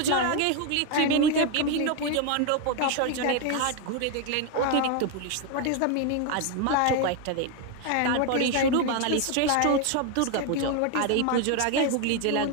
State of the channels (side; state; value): both; different; correlation 0.01